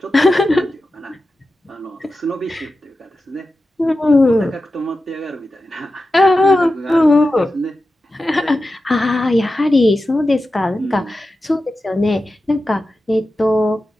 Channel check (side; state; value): both; normal; correlation 0.92